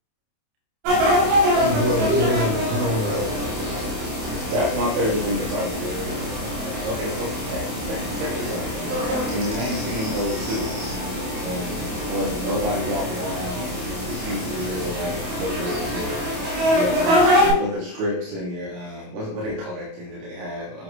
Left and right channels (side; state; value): left; late; 28 ms